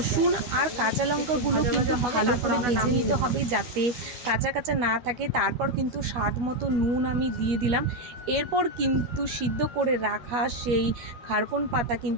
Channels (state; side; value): late; left; 13 ms